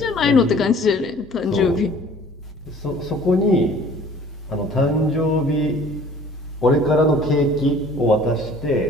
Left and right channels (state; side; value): normal; both; correlation 0.50